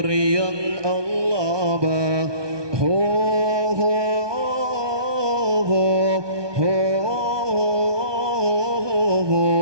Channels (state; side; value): late; left; 1.2 ms